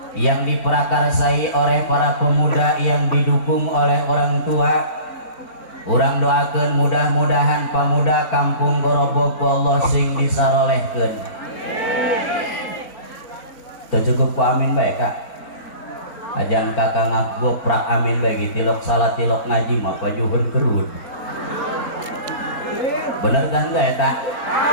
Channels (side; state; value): right; late; 4.0 ms